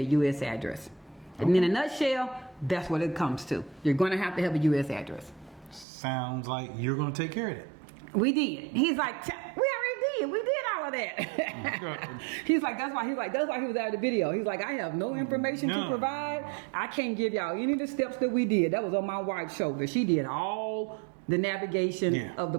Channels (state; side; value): drops out; left; at 5.9 s